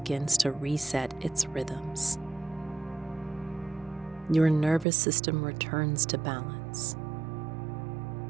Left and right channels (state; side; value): drops out; left; at 4.9 s